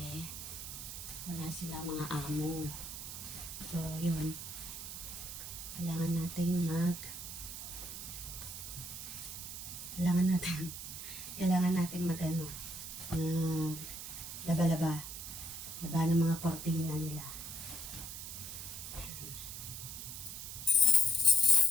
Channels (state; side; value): noise; right; hiss, 8 dB below the sound